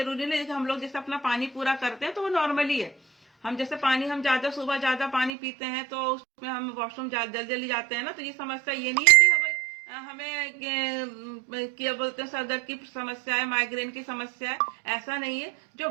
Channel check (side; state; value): left; drops out; at 5.3 s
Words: नहीं कि हम लोग जैसे अपना पानी पूरा करते हैं तो वो नॉर्मली है। हम जैसे पानी, हम ज्यादा सुबह ज्यादा पानी पीते हैं तो उसमें हम वॉशरूम जल्दी जल्दी जाते हैं ना, तो ये समस्या ये नहीं है कि हमें क्या बोलते हैं सर दर्द की समस्या है, माइग्रेन की समस्या है, ऐसा नहीं है। जो